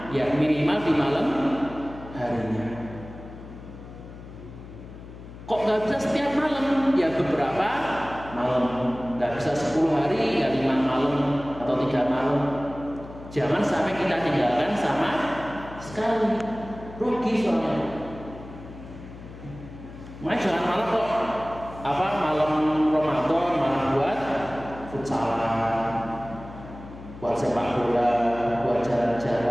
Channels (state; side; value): noise; left; hum, 15 dB below the sound